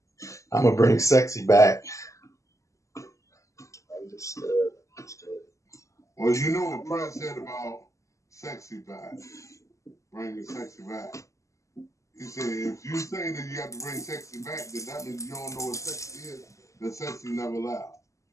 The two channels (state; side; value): late; right; 0.16 ms